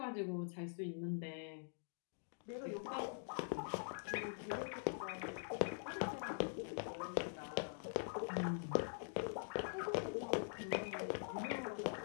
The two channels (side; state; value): right; silent; digital silence